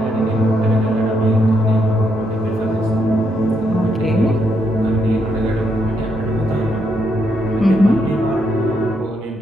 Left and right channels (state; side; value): normal; both; correlation 0.77